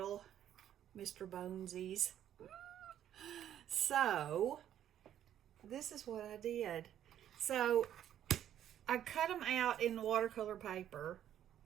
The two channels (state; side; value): quieter; left; 10.8 dB